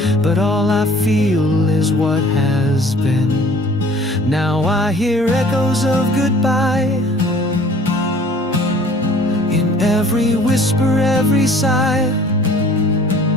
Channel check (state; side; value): normal; both; correlation 0.52